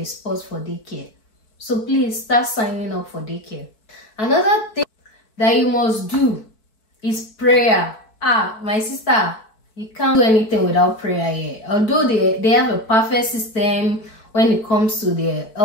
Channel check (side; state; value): right; late; 4.6 ms